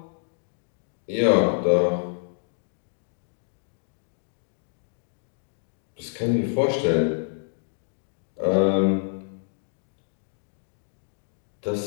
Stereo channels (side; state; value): right; silent; digital silence